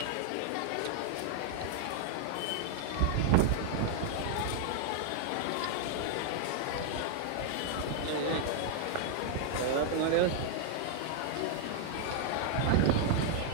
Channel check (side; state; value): both; different; correlation 0.00